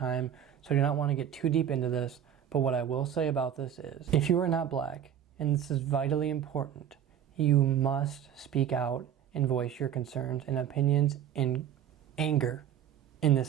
so I do not want to get too deep into this, but what I will say about this is, if you are not black, and this is vitally important, you must speak out and voice your concerns and opinions and anger in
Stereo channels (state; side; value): quieter; left; 9.5 dB